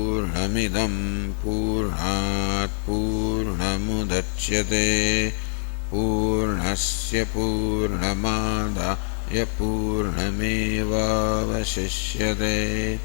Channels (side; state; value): right; silent; digital silence